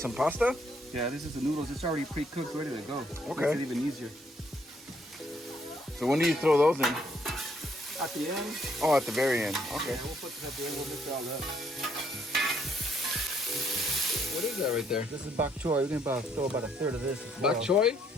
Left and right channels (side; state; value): both; normal; correlation 0.70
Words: pasta? Yeah, this is the noodles. It's already pre-cooked, ready to go. Okay. Makes it even easier. So when do you throw those in? At the end. Oh, at the very end. Okay. Yeah, we'll put this at the end. We'll mix it all up. What is that right there? This is bok choy. We're gonna throw about a third of this. Bok choy?